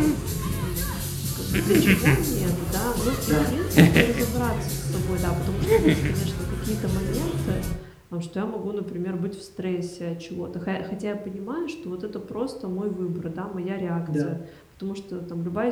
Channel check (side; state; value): both; identical; correlation 1.00